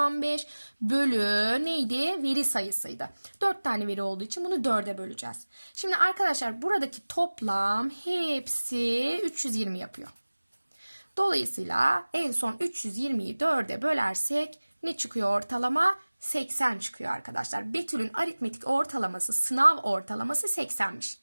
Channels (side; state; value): both; inverted; correlation -1.00